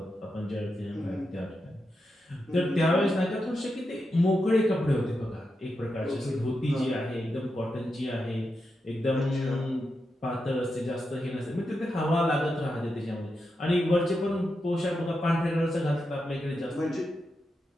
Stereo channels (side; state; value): both; normal; correlation 0.87